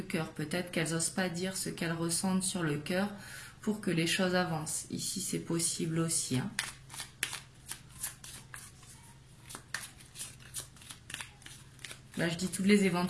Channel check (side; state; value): both; identical; correlation 1.00